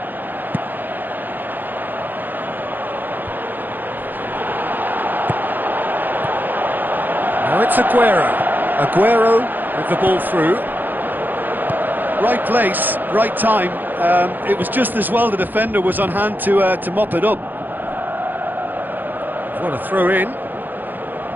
Now it's Aguero. Aguero with the ball through. Right place, right time. It was just as well the defender was on hand to mop it up. What a throw in.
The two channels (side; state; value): left; late; 0.088 ms